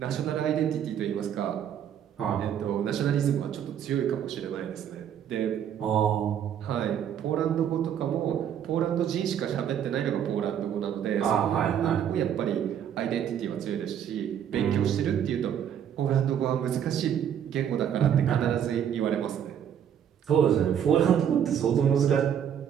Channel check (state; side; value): quieter; left; 9.2 dB